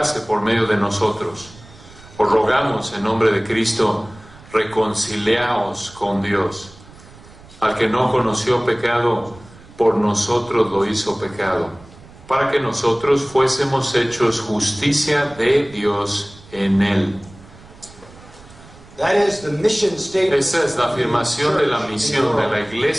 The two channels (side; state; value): right; noise; rumble, 22 dB below the sound